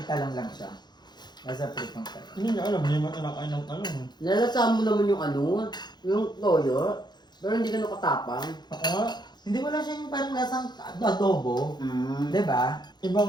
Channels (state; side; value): late; right; 0.21 ms